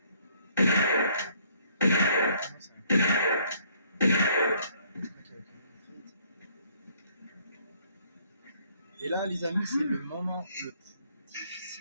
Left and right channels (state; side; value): inverted; both; correlation -0.64